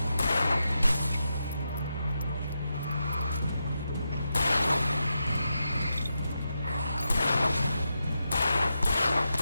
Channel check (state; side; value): inverted; both; correlation -0.87